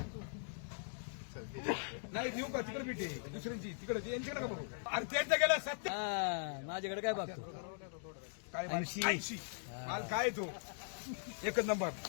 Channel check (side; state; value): right; silent; digital silence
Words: नाही देऊ का तिकडे भेटे दुसऱ्यांची तिकडे यांच्याकडे का बघू अरे त्यांच्या गेला 70 माझ्याकडे काय बघतो काय माल 80 माल काय तो एकच नंबर